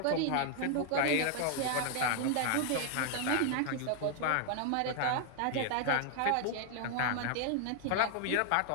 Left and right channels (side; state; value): both; different; correlation 0.00